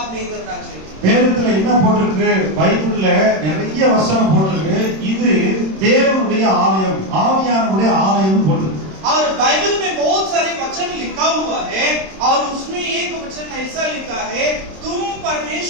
नहीं करना चाहिए। வேதத்துல என்ன போட்டிருக்கு? பைபிள்ல நிறைய வசனம் போட்டிருக்கு. இது தேவனுடைய ஆலயம், ஆவியானவருடைய ஆலயம் போட்டிருக்கு. और बाइबल में बहुत सारे वचन लिखा हुआ है और उसमें एक वचन ऐसा लिखा है तुम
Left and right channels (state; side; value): late; left; 26 ms